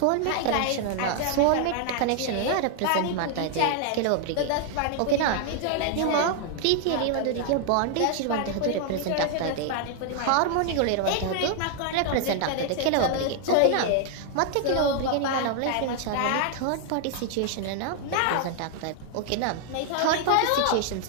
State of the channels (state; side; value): different; both; correlation 0.00